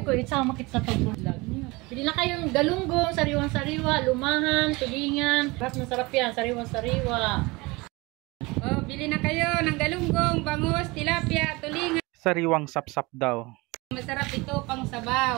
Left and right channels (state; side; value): quieter; left; 24.0 dB